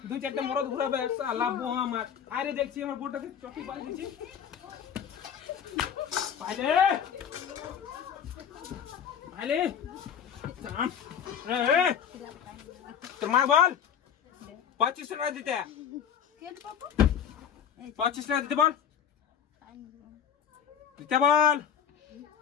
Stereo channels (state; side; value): quieter; right; 8.3 dB